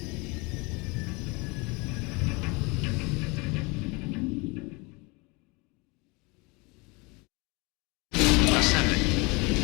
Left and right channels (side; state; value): right; quieter; 27.5 dB